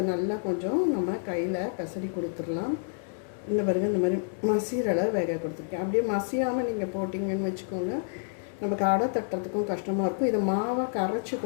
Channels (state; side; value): silent; right; digital silence